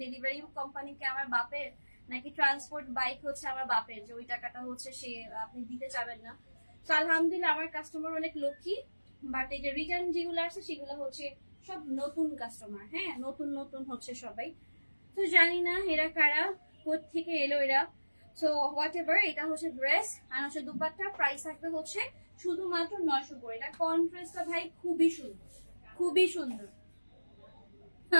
ডেলিভারি কোম্পানিকে আমার বাপের, নাকি ট্রান্সপোর্ট বাইক হচ্ছে আমার বাপের, যে ওই টাকাটা হচ্ছে সে আপনি দিতে চাবেন না। তো আলহামদুলিল্লাহ আমার কাস্টমার অনেক লক্ষ্মী, বাট এই যে রিটার্ন যেগুলো আসছে সেগুলো হচ্ছে সব নতুন কাস্টমার, হ্যাঁ নতুন নতুন হচ্ছে সবাই। তো জানি না এরা কারা, কোথেকে এলো এরা। সো হোয়াট এভার, এটা হচ্ছে ড্রেস আর হচ্ছে দুপাট্টা, প্রাইস থাকবে হচ্ছে শুধুমাত্র 900 করে। এটা কন্ট্রাস্টটা ভাই খুবই সুন্দর, খুবই সুন্দর।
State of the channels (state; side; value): inverted; both; correlation -1.00